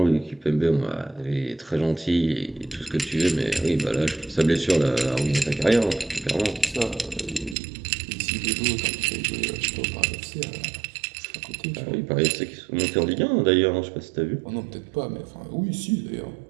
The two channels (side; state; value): left; drops out; at 7.6 s